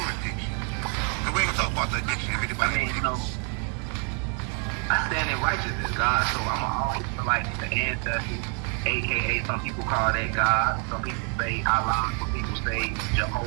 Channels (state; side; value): quieter; left; 39.9 dB